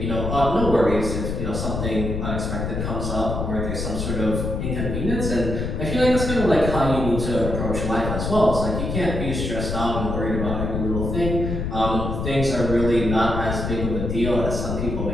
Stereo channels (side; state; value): left; noise; rumble, 3 dB below the sound